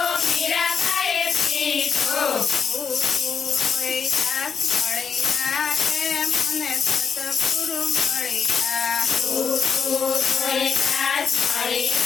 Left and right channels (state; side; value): quieter; right; 6.3 dB